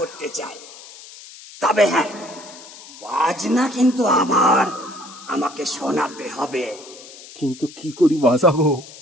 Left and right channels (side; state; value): left; noise; hiss, 18 dB below the sound